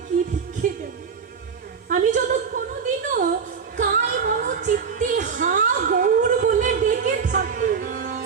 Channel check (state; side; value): quieter; left; 6.1 dB